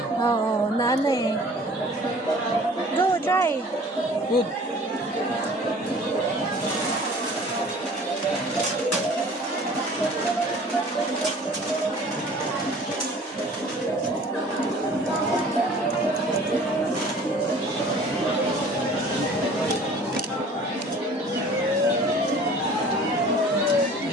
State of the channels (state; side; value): normal; both; correlation 0.48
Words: Oo, na ano eh. Go, try. Good.